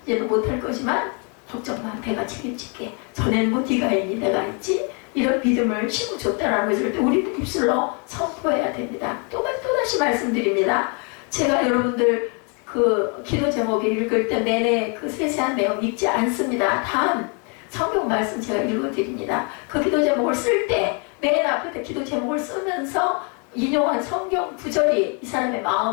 이제는 못할 거지만 걱정 마. 내가 책임질게. 전에는 뭐 네가 있니? 내가 있지? 이런 믿음을 심어줬다라는 것을 우리 입술로 선포해야 됩니다. 또다시 말씀드립니다. 제가 여러분들 그 기도 제목을 읽을 때 내내 그 세세한 내용 읽지 않습니다. 단 성경 말씀 제가 읽어드립니다. 그 기도 제목을 쓸 때 맨 앞에 기도 제목을 쓰면서 인용한 성경 구절이 이 사람의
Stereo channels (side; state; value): right; quieter; 36.2 dB